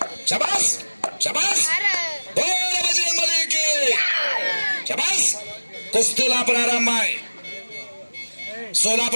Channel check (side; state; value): both; inverted; correlation -1.00